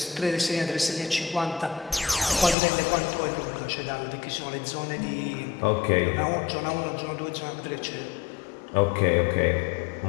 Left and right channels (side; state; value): right; drops out; at 2.6 s